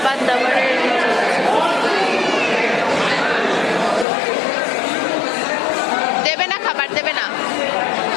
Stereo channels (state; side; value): drops out; right; at 4.0 s